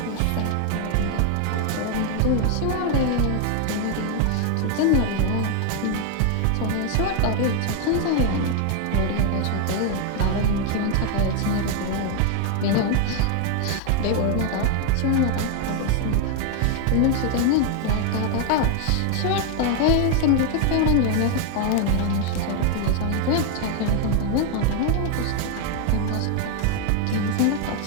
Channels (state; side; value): different; both; correlation 0.01